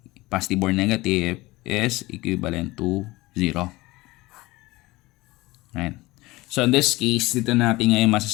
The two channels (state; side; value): quieter; right; 20.6 dB